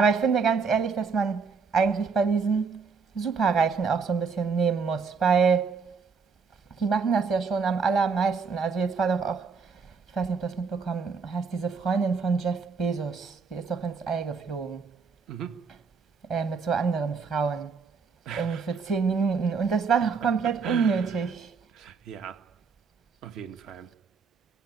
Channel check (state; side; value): quieter; left; 5.3 dB